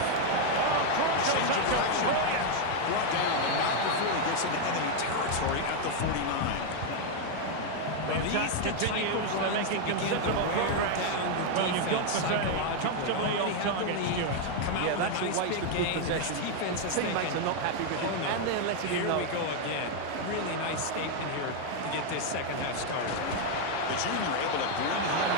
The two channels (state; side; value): different; both; correlation 0.00